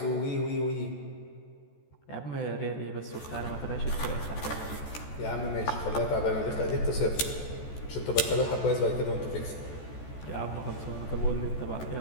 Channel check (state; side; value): late; right; 14 ms